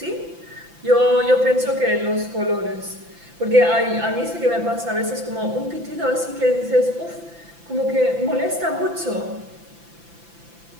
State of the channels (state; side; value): late; left; 5.9 ms